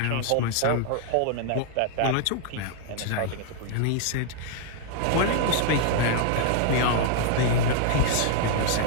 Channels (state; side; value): different; both; correlation 0.00